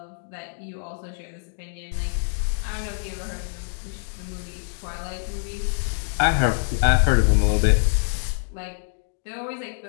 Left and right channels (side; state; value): right; silent; digital silence